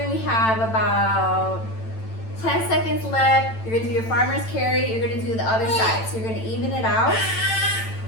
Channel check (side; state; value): right; late; 9.0 ms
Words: we have about 10 seconds left. You're gonna do your farmer's carry. You're gonna do the other side. So you're gonna even it out.